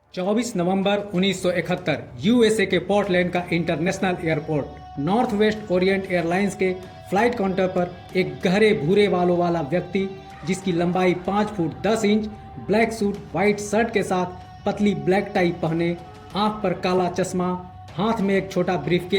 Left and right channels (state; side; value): identical; both; correlation 1.00